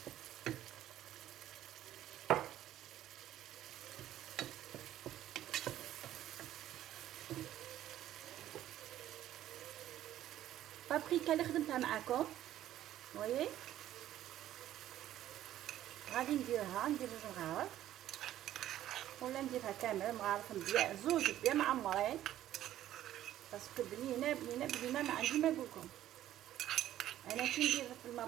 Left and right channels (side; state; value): left; quieter; 12.7 dB